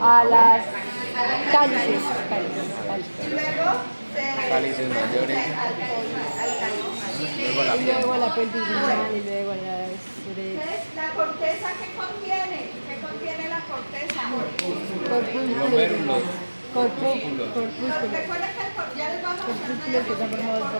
A las cálices. Y luego se Cálices mayores. al Luego la Y luego a la pelvis renal y luego a las Entonces, ¿la corteza qué contiene? ¿Qué contiene la corteza? Glomérulos. corpúsculos. Recuerden que ya les vamos a Corpúsculos que están formados por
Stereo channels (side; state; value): both; inverted; correlation -1.00